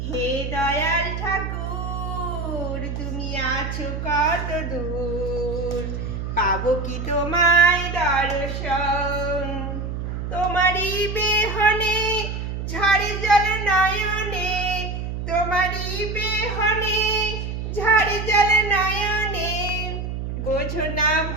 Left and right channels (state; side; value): noise; right; hum, 5 dB below the sound